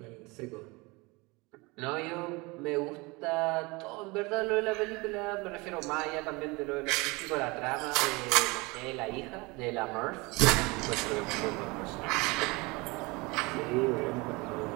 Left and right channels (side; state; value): left; quieter; 25.2 dB